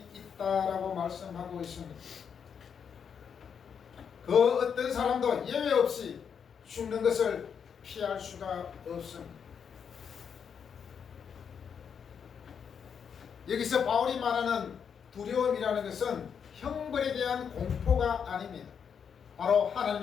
있다라고 말씀하고 있습니다. 그 어떤 사람도 예외 없이 죽는 것을 피할 수가 없습니다. 여기서 바울이 말하는 두려움이라는 것은 형벌에 대한 공포가 아닙니다. 바로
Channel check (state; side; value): quieter; right; 7.1 dB